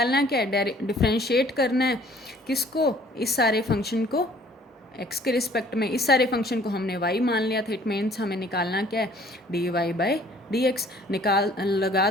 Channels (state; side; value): normal; both; correlation 0.56